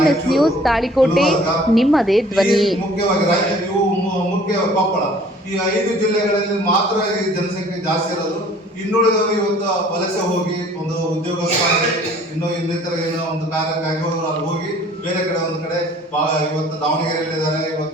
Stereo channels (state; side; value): normal; both; correlation 0.53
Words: ನ್ಯೂಸ್, ತಾಳಿಕೋಟೆ, ನಿಮ್ಮದೇ ಧ್ವನಿ. ಈ 5 ಜಿಲ್ಲೆಗಳಲ್ಲಿ ಮಾತ್ರ ಈ ಜನಸಂಖ್ಯೆ ಜಾಸ್ತಿ ಇರೋದು. ಇನ್ನುಳಿದವರು ಇವತ್ತು ವಲಸೆ ಹೋಗಿ ಒಂದು ಉದ್ಯೋಗ ಇನ್ನಿತರ ಏನೋ ಒಂದು ಕಾರ್ಯಕ್ಕಾಗಿ ಅಲ್ಲಿ ಹೋಗಿ ಬೇರೆ ಕಡೆ ಒಂದು ಕಡೆ ಇವತ್ತು ದಾವಣಗೆರೆಯಲ್ಲಿದ್ದಾರೆ.